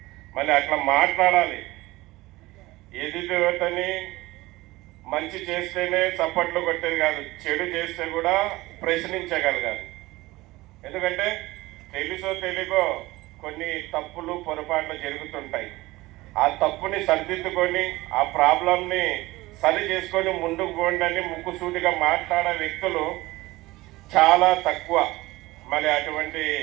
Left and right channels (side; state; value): left; quieter; 19.5 dB